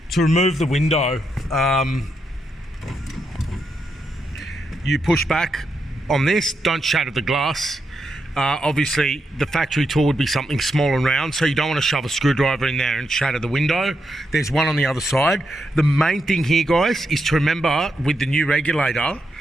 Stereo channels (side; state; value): both; normal; correlation 0.83